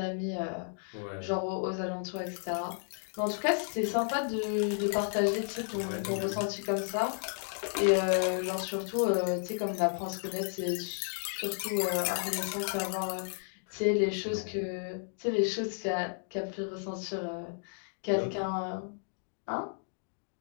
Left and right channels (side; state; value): right; silent; digital silence